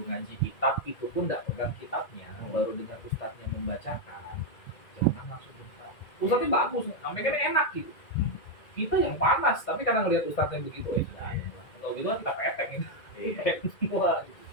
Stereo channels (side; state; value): right; late; 2.1 ms